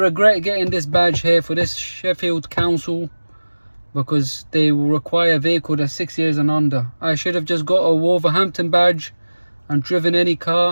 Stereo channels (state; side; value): inverted; both; correlation -1.00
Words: getting this badge here for this Sheffield Council, because they will require a vehicle that's 6 years and under. I should have just got a Wolverhampton badge and driven any